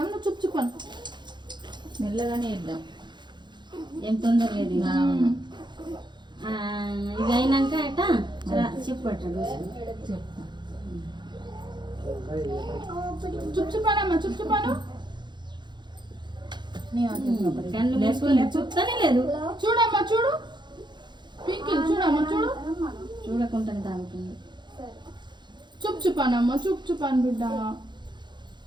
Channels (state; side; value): late; left; 0.22 ms